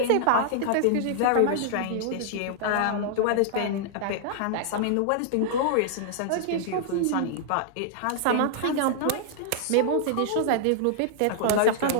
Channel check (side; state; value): both; different; correlation -0.01